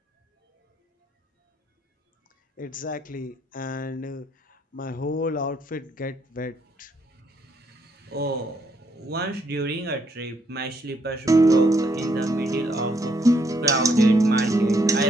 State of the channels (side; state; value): both; normal; correlation 0.73